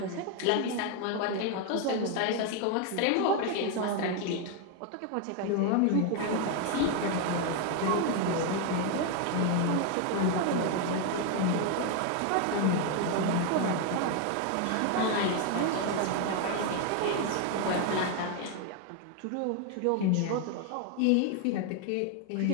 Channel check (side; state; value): both; different; correlation 0.01